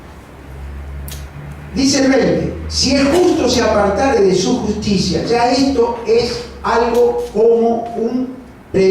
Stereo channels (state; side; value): identical; both; correlation 1.00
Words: Dice el 20, si el justo se apartare de su justicia, ya esto es algo como un